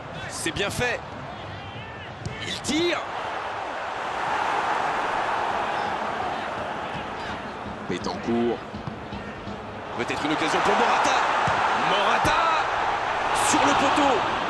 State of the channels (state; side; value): identical; both; correlation 1.00